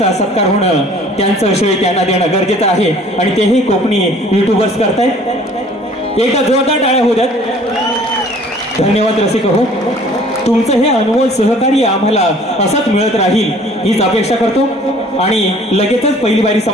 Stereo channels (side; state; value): both; normal; correlation 0.53